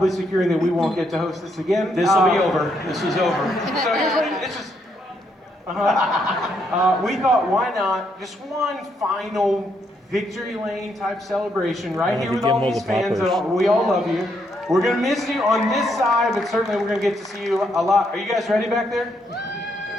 securing that we won't get to host this again. This will be over. This is over. So here's what it's just. We thought, why not just one final victory lane type celebration right here with all these fans. We all love you. We're gonna miss you on this side, but certainly we're gonna get to see you a lot. Are you guys ready back there?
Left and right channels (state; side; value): normal; both; correlation 0.75